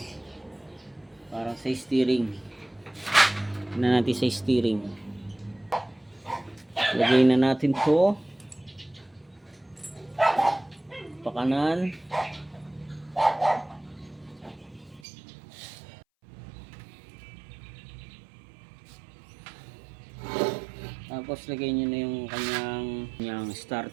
parang sa steering. Na natin sa steering. Lagay na natin to pakanan. Tapos lagay nyo na yung kanyang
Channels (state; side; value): drops out; left; at 15.0 s